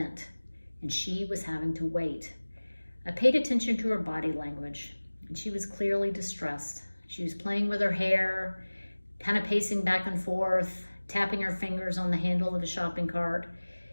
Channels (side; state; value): both; inverted; correlation -1.00